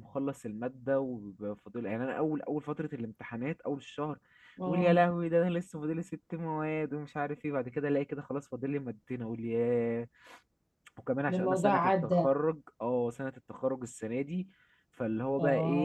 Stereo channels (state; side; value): identical; both; correlation 1.00